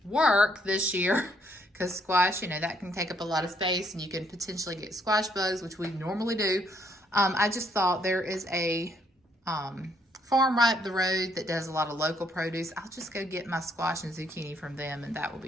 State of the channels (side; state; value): both; normal; correlation 0.70